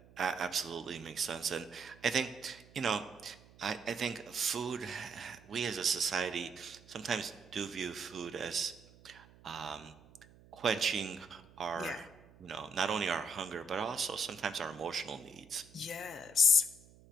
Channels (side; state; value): right; noise; hum, 24 dB below the sound